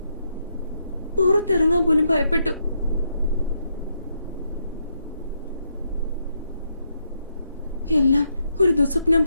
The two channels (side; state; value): both; inverted; correlation -0.80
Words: പുറത്തിറങ്ങാൻ പോലും ഭയപ്പെട്ടു. എല്ലാം ഒരു ദുസ്വപ്നം